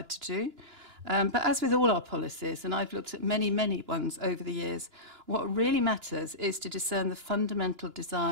to do. But as with all our policies, and I've looked at many, many ones over the years, what really matters is to discern the fundamental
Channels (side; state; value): left; late; 2.9 ms